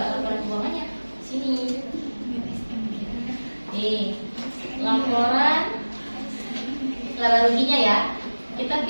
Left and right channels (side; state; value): both; inverted; correlation -1.00